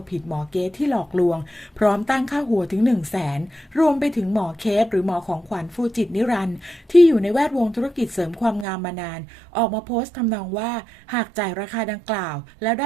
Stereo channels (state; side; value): drops out; left; at 8.7 s